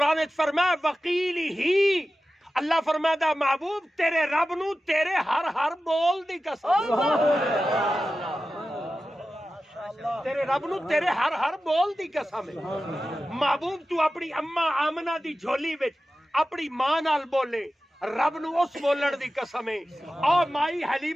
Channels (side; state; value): both; normal; correlation 0.94